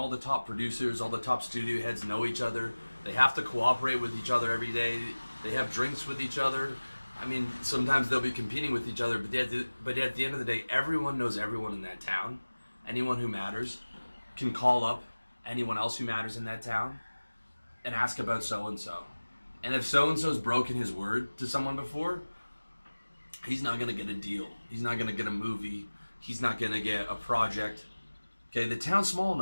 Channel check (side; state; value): both; inverted; correlation -1.00